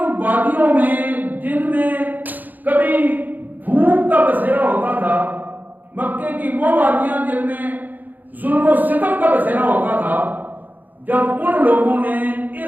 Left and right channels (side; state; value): left; late; 0.084 ms